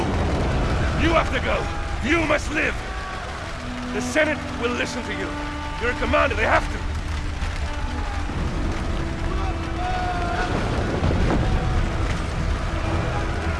You have to go! You must live! The Senate will listen to you. You're a commander, they have to.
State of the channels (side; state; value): both; identical; correlation 1.00